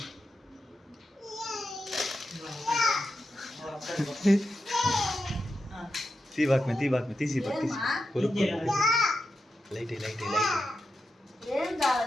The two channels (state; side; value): normal; both; correlation 0.89